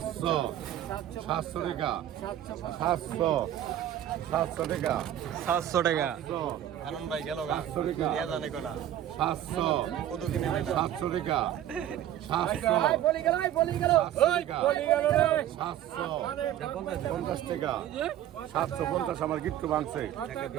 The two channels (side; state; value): left; quieter; 11.7 dB